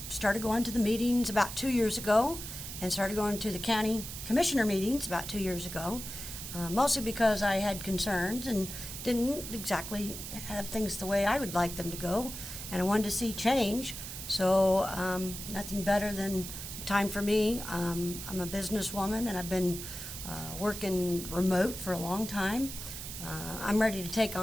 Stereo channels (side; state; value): right; noise; hiss, 9 dB below the sound